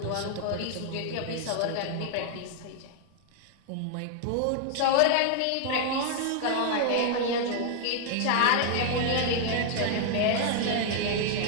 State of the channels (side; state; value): both; different; correlation 0.00